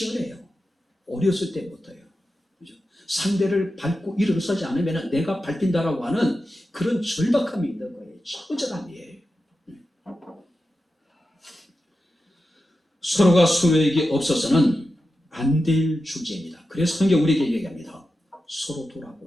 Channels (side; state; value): both; normal; correlation 0.91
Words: 어렸을 때부터요. 그죠? 상대를 밟고 일어서지 않으면 내가 밟힌다라고 하는 그런 절박함이 있는 거예요. 처절함이에요. 서로가 서로에게 없어서는 안 될 존재입니다. 그래서 성경 우리에게 얘기합니다. 서로